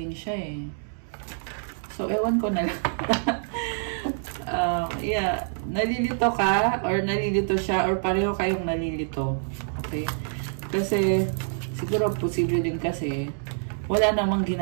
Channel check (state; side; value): silent; left; digital silence